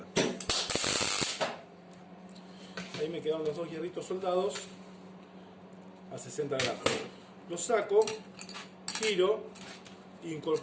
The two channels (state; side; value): identical; both; correlation 1.00